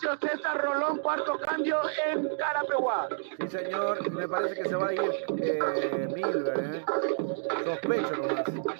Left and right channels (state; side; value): silent; left; digital silence